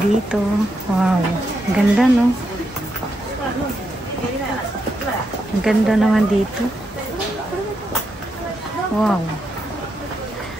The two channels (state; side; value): normal; both; correlation 0.82